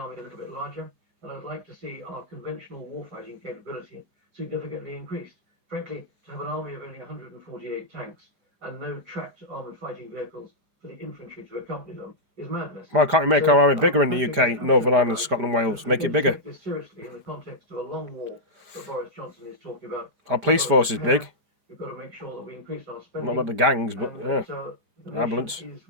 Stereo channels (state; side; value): late; left; 5.0 ms